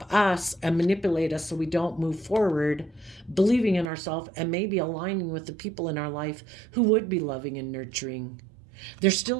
us and manipulate us so we don't move forward, believing in ourselves and maybe aligning with the people in our life who would be loving and nurturing. They're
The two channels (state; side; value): drops out; left; at 3.9 s